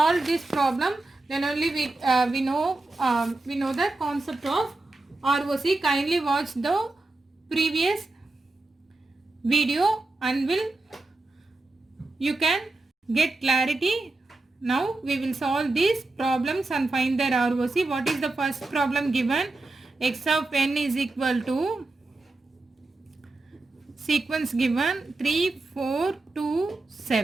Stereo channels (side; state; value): left; quieter; 3.1 dB